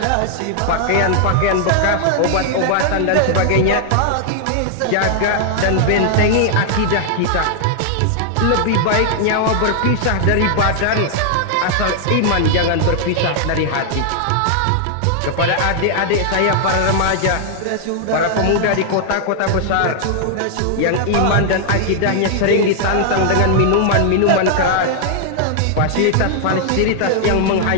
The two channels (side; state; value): both; different; correlation 0.00